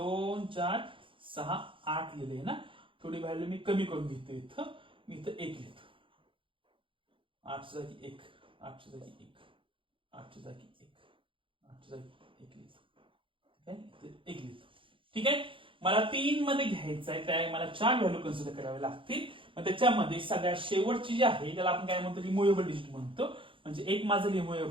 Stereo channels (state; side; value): late; left; 0.25 ms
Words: 4 6 8 लिहिले ना. थोडी व्हॅल्यू मी कमी करून घेतो इथं. मी इथं 1 लिहितो. 8 जागी 1 8 जागी 1 8 जागी 1 8 जागी 1 लिहितो. ठीक आहे इथे 1 लिहितो. ठीक आहे. मला 3 मध्ये घ्यायचं आहे त्या मला 4 व्हॅल्यू कन्सिडर करावे लागतील. मग त्याच्यामध्ये सगळ्यात शेवटची जी आहे त्याला आपण काय म्हणतो रिमुव्हेबल डिजिट म्हणतो. म्हणजे एक माझं